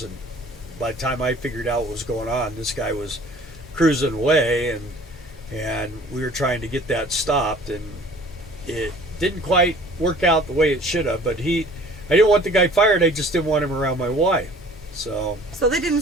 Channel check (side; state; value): both; normal; correlation 0.50